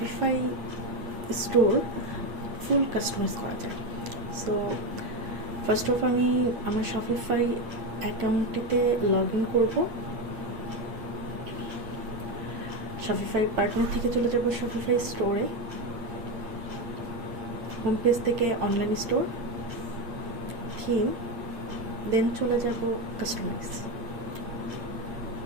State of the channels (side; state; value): left; late; 8.6 ms